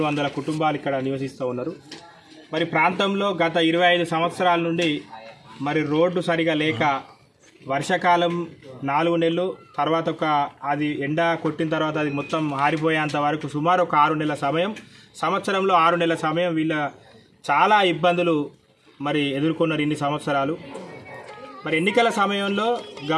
కుటుంబాలు ఇక్కడ నివసిస్తూ ఉన్నారు. మరి ప్రాంతంలో గత 25 సంవత్సరాల నుండి మరి రోడ్డు సరిగా లేక వర్షాకాలం 4 నెలలు తర్వాత అది ఎండ కొట్టిన తర్వాత అది మొత్తం ఆరిపోయేంత వరకు సుమారు ఒక 6 నెలల సమయం, సంవత్సరంలో 6 నెలల సమయం వీళ్ళ చాలా ఇబ్బందులు మరి ఎదుర్కొన్నారు ఇన్ని సంవత్సరాలు. మరి ఎన్నికల సమయంలో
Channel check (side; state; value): both; identical; correlation 1.00